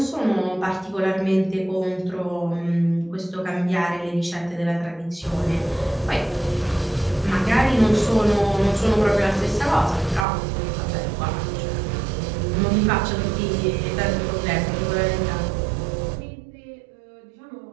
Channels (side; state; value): left; drops out; at 10.2 s